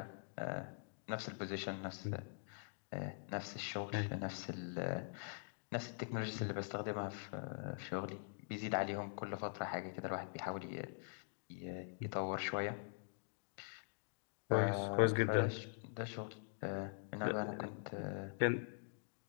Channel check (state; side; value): silent; right; digital silence